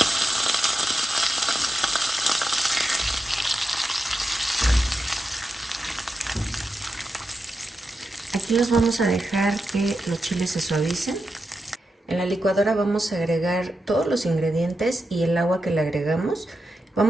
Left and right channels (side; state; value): both; normal; correlation 0.89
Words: Aquí los vamos a dejar que los chiles se suavicen. En la licuadora vamos a agregar todos los ingredientes y el agua que le agregamos.